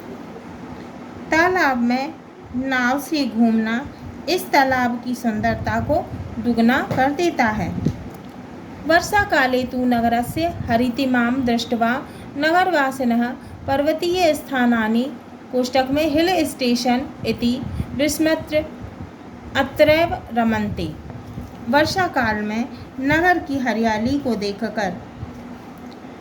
तालाब में नाव से घूमना इस तालाब की सुंदरता को दुगना कर देता है। वर्षा काले तु नगरस्य हरितिमां दृष्ट्वा नगरवासिनः पर्वतीय स्थानानि कोष्टक में हिल स्टेशन इति विस्मृत्य अत्रैव रमन्ते। वर्षा काल में नगर की हरियाली को देखकर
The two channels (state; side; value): identical; both; correlation 1.00